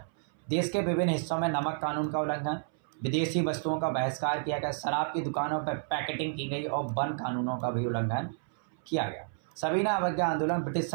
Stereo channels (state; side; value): silent; left; 57 dB below the other